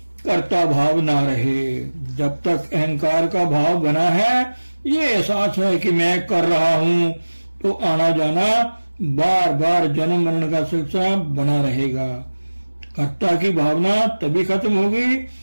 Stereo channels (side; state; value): both; inverted; correlation -1.00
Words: कर्ता भाव ना रहे। जब तक अहंकार का भाव बना है, ये एहसास है कि मैं कर रहा हूँ, तो आना जाना बार बार जन्म मरण का सिलसिला बना रहेगा। कर्ता की भावना तभी खत्म होगी